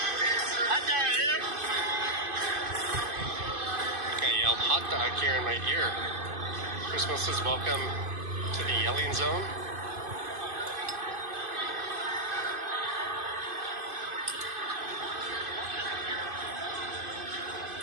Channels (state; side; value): late; left; 2.5 ms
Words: I yelled hot dog here in my ear. Christmas says welcome to the yelling zone.